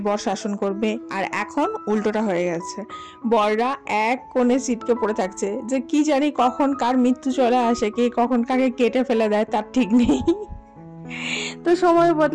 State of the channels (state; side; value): identical; both; correlation 1.00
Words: বর শাসন করবে। আর এখন উল্টোটা হয়ে গেছে, বররা এক কোণে ছিটকে পড়ে থাকছে যে কি জানি কখন কার মৃত্যু চলে আসে, কে কখন কাকে কেটে ফেলে দেয় তার ঠিক নেই। তো সময়